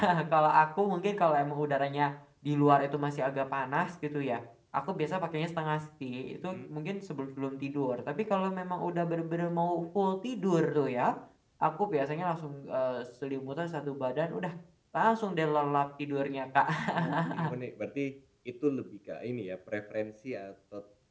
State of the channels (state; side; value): identical; both; correlation 1.00